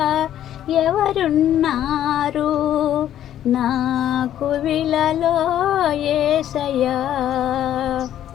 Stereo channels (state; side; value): quieter; right; 11.4 dB